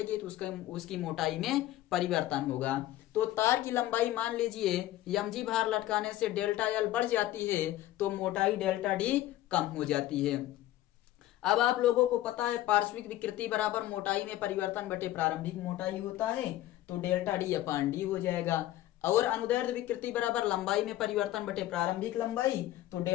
तो उसकी मोटाई में परिवर्तन होगा। तो तार की लंबाई मान लीजिए mg भार लटकाने से डेल्टा एल बढ़ जाती है तो मोटाई डेल्टा डी कम हो जाती है। अब आप लोगों को पता है पार्श्विक विकृति बराबर मोटाई में परिवर्तन बटे प्रारंभिक मोटाई होता है, तो डेल्टा डी अपान डी हो जाएगा। और अनुदैर्ध्य विकृति बराबर लंबाई में परिवर्तन बटे प्रारंभिक लंबाई, तो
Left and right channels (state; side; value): quieter; right; 14.6 dB